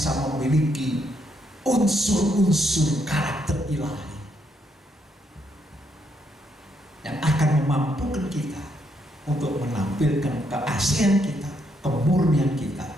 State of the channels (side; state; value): both; normal; correlation 0.76